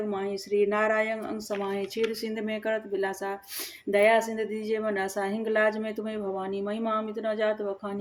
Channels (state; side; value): identical; both; correlation 1.00